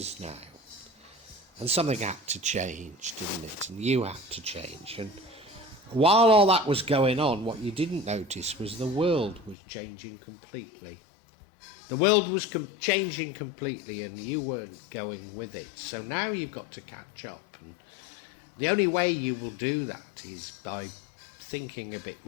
now, and something had to change, didn't it? And you had to change. And while all that was going on, what you didn't notice was the world was changing completely. The world was changing completely and you weren't going with it. So now you've got to catch up. And the only way you will do that is by thinking a bit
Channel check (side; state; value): right; drops out; at 9.6 s